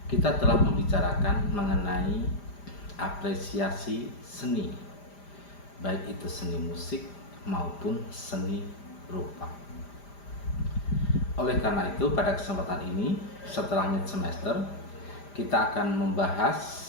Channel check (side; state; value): right; late; 5.0 ms